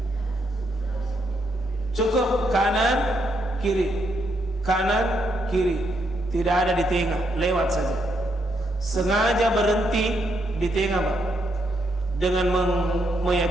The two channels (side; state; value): both; normal; correlation 0.77